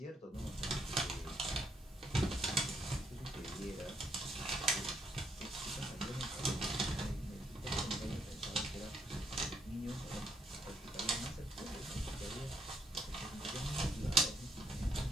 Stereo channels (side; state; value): both; normal; correlation 0.72